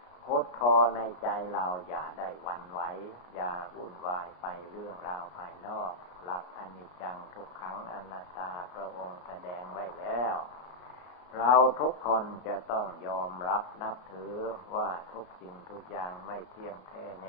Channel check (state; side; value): late; right; 33 ms